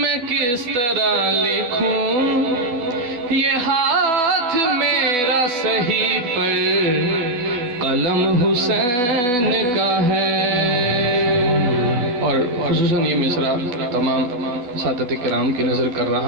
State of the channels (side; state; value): left; late; 12 ms